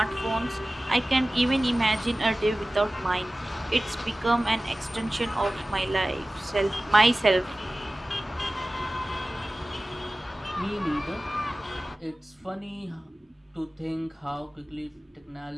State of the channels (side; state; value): both; normal; correlation 0.97